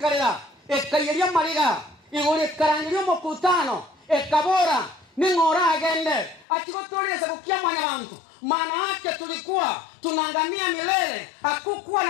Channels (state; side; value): drops out; right; at 6.5 s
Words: ekayeria mariga igore karangirio mokutano ekabora ningora agende achigotoleza kukia mwanya bantu maana yake tulikuwa tunangamia milele hakukuwa